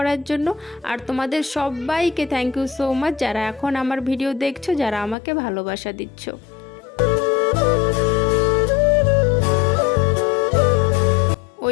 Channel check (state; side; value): drops out; right; at 5.2 s